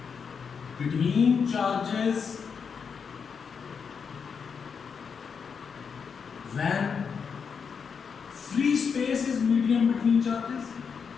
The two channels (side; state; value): right; quieter; 6.2 dB